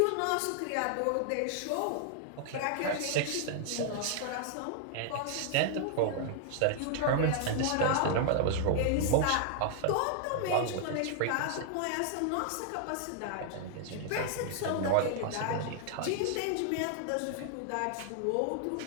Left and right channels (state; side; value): different; both; correlation 0.00